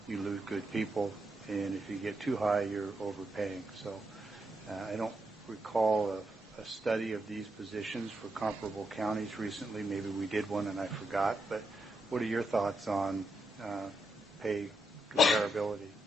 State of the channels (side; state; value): both; normal; correlation 0.82